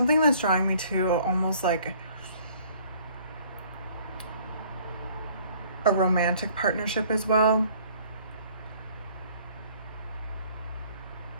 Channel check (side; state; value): both; inverted; correlation -0.57